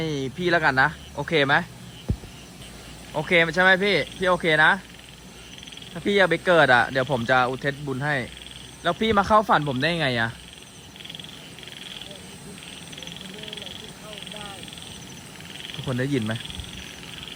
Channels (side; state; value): both; identical; correlation 1.00